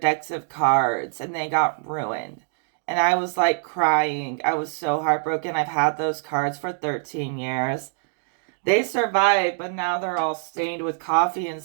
decks of cards. And they got ruined. And I was crying. I was so heartbroken. I've had those cards for 13 years. They survived, but now they're all stained with coffee and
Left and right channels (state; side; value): silent; left; digital silence